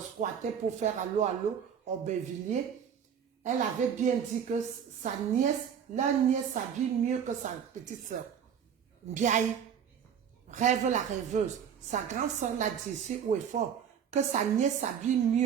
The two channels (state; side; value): quieter; left; 8.0 dB